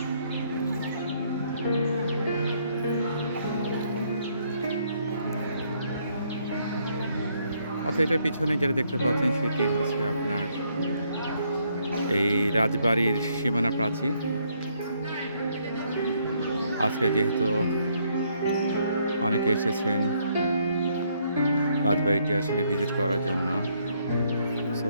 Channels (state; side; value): inverted; both; correlation -0.71